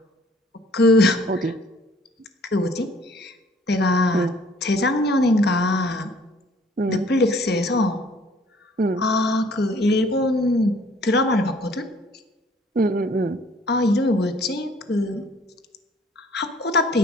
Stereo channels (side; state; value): both; normal; correlation 0.58